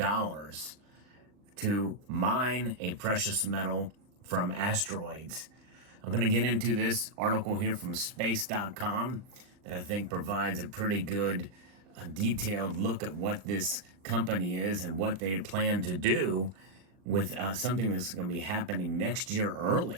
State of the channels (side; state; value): left; late; 39 ms